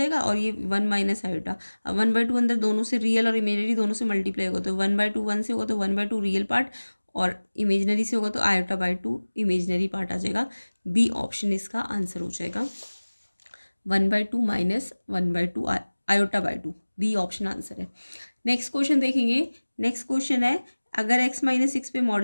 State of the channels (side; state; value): both; inverted; correlation -1.00